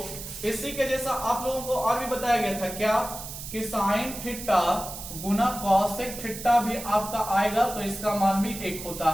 इसी के जैसा आप लोगों को और भी बताया गया था क्या, कि साइन थीटा गुना कॉसेक थीटा भी आपका आएगा तो इसका मान भी 1 होता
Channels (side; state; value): right; noise; hiss, 10 dB below the sound